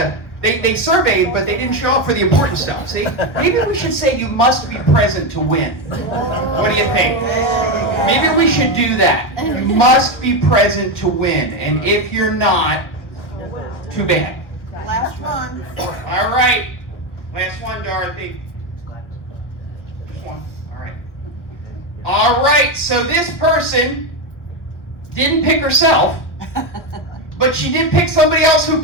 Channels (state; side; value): late; right; 1.1 ms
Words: They surveyed, but they didn't show up for the important stuff. See? Maybe we should say you must be present to win. What do you think? Maybe we should do that. You must be present to win. And if you're not, too bad. Last one. All right. Last one, Dorothy. Just one. All right. All right. So this person didn't pick herself, but she did pick somebody else who